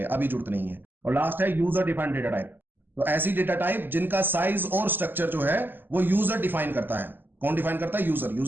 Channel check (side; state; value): left; late; 0.093 ms